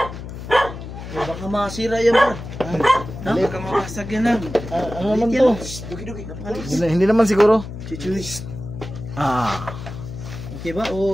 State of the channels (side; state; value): left; noise; hum, 10 dB below the sound